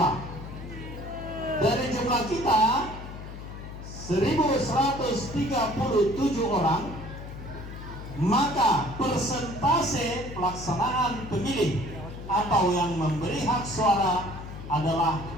Dari jumlah kita 1137 orang, maka persentase pelaksanaan pemilih atau yang memberi hak suara adalah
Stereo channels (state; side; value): noise; left; hum, 11 dB below the sound